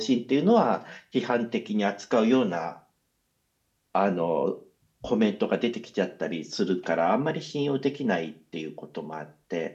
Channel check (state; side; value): identical; both; correlation 1.00